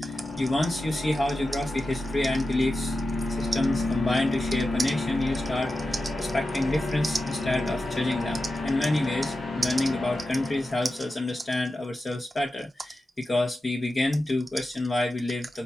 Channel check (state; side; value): normal; both; correlation 0.92